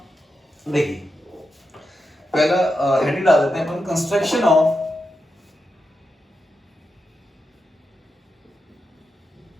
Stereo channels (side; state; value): both; normal; correlation 0.88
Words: देखिए, पहला हेडिंग डाल देते हैं अपन, कंस्ट्रक्शन ऑफ